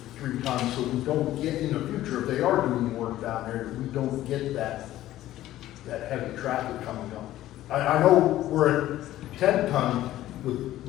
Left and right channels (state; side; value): quieter; right; 14.2 dB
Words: 3 tons so we don't get in the future, if they are doing work down there, we don't get that heavy traffic coming up. I know we're at 10 ton with